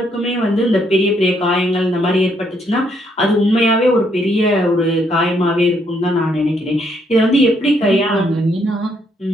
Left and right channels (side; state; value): both; normal; correlation 0.72